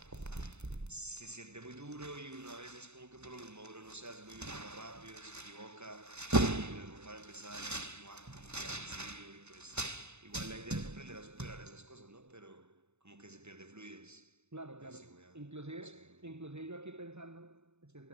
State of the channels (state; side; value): late; left; 0.81 ms